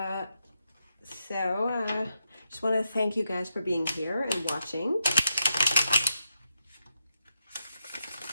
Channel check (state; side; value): inverted; both; correlation -0.84